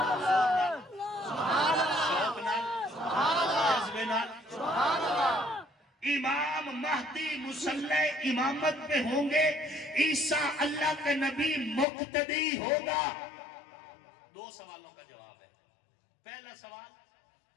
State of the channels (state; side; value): drops out; right; at 11.9 s